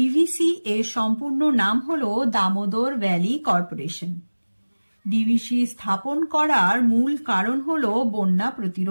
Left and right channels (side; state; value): both; inverted; correlation -1.00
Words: এর সম্পূর্ণ নাম হল দামোদর ভ্যালি কর্পোরেশন। ডিভিসি স্থাপন করার মূল কারণ হল বন্যা